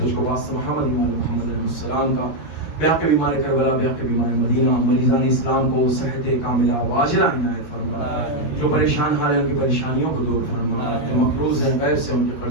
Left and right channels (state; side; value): late; right; 13 ms